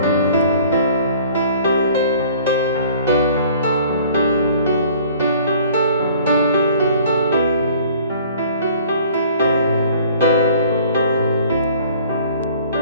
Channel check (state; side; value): inverted; both; correlation -0.52